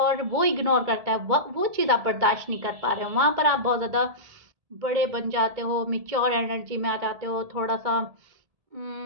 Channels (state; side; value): late; left; 1.7 ms